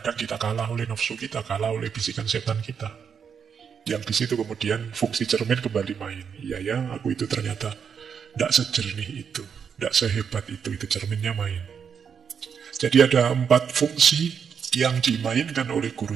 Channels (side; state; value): left; quieter; 6.9 dB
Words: kita kalah oleh nafsu kita, kalah oleh bisikan setan kita. Yang di situ kemudian fungsi cermin kembali main. Iya ya, aku itu ternyata tidak sejernih itu, tidak sehebat itu cerminnya main. Jadi ada 4 fungsi yang dimainkan oleh